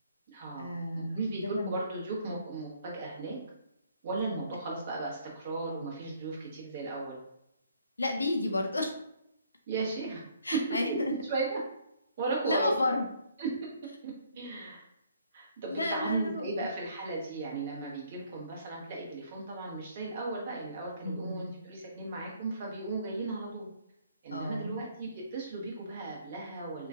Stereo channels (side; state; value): both; inverted; correlation -0.63